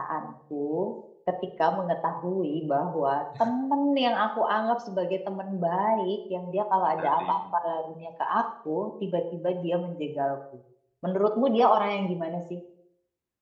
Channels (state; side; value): identical; both; correlation 1.00